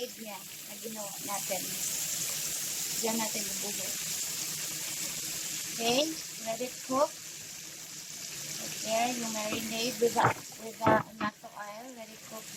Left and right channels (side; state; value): both; identical; correlation 1.00